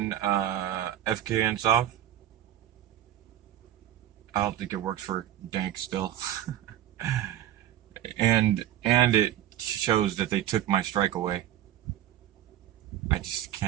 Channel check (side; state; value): left; quieter; 12.0 dB